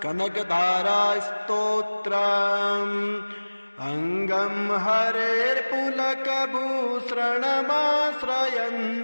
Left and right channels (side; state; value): both; inverted; correlation -1.00